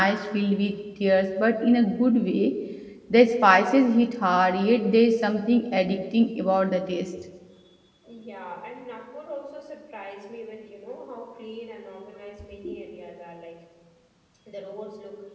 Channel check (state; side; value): identical; both; correlation 1.00